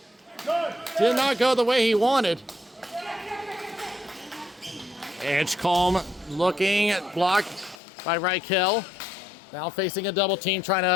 Did not go the way he wanted. Edgecombe looking, blocked by Reichel. Now facing a double team, trying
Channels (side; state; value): right; drops out; at 7.8 s